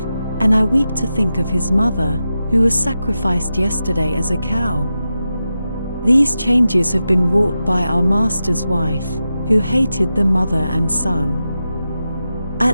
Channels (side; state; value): both; inverted; correlation -0.91